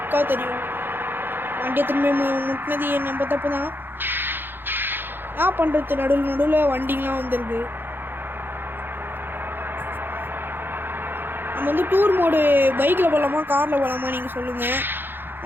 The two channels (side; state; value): left; late; 0.099 ms